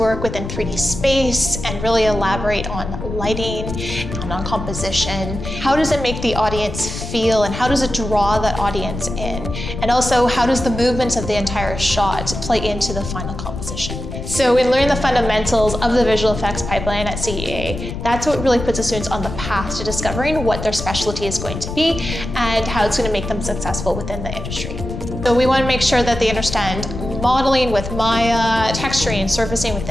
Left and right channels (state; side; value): noise; left; rumble, 7 dB below the sound